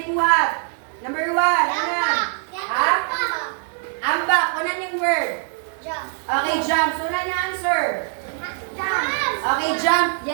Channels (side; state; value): left; silent; 56 dB below the other